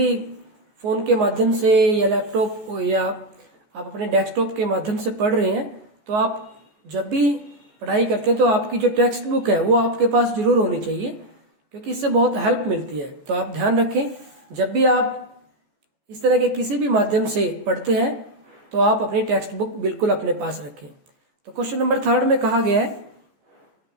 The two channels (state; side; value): late; left; 14 ms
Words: फोन के माध्यम से या लैपटॉप या आप अपने डेस्कटॉप के माध्यम से पढ़ रहे हैं, तो आप जब भी पढ़ाई करते हैं तो आपकी जो टेक्स्ट बुक है वो आपके पास जरूर होनी चाहिए, क्योंकि इससे बहुत हेल्प मिलती है। तो आप ध्यान रखें, जब भी आप इस तरह के किसी भी माध्यम से पढ़ते हैं तो आप अपनी टेक्स्ट बुक बिल्कुल अपने पास रखें। तो क्वेश्चन नंबर 3 में कहा गया है,